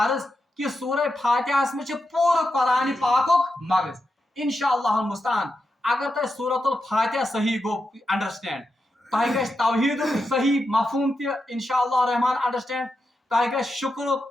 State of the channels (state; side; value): normal; both; correlation 0.87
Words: عرض کہ سورہ فاتحہس مز پورٕ قرآن پاکک مغز. انشاءاللہ المستعان اگر تہ سورۃ الفاتحہ صحیح گو انڈرسٹینڈ تہ گژھِ توحید صحیح مفہوم تہ انشاءاللہ الرحمن انڈرسٹینڈ تہ گژھِ شکرک